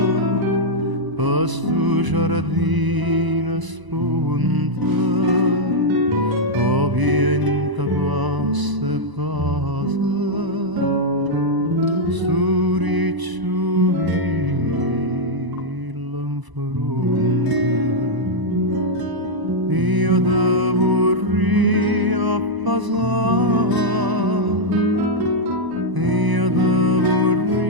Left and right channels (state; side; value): late; left; 1.0 ms